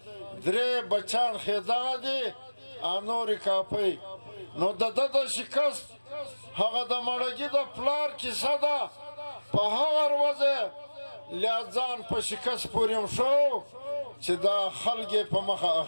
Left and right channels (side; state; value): both; inverted; correlation -1.00